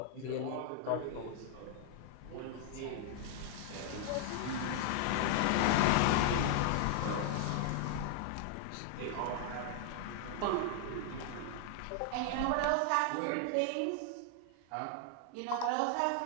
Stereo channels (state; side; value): different; both; correlation 0.00